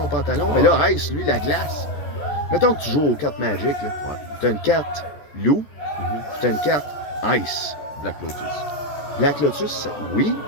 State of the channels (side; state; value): right; late; 14 ms